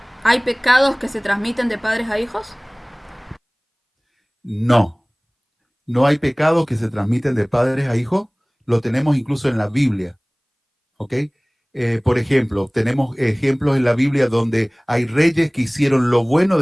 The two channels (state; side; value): identical; both; correlation 1.00